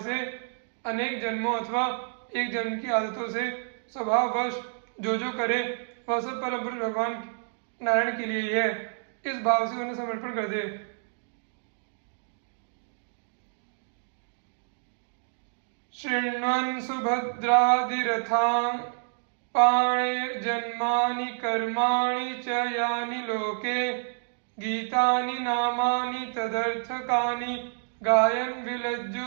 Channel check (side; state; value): left; silent; digital silence